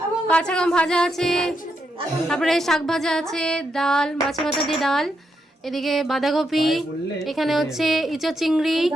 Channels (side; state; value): both; normal; correlation 0.81